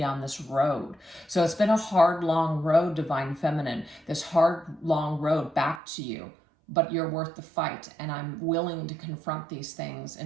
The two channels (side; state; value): left; drops out; at 5.8 s